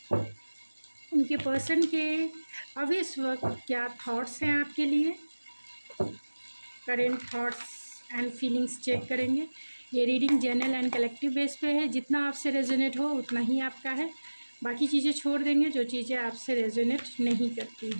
उनके पर्सन के अभी इस वक्त क्या थॉट्स हैं आपके लिए। Current thoughts and feelings check करेंगे। ये reading general and collective base पे है। जितना आपसे रेजोनेट हो उतना ही आपका है। बाकी चीज़ें छोड़ देंगे जो चीज़ें आपसे रेजोनेट नहीं करती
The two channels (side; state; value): both; inverted; correlation -1.00